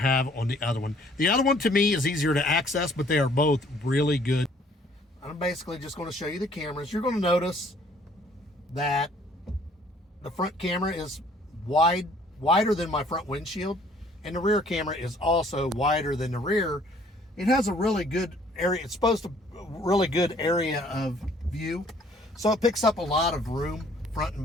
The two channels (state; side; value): normal; both; correlation 0.59